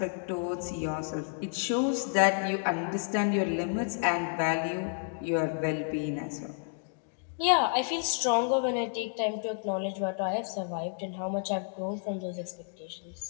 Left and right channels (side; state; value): right; silent; digital silence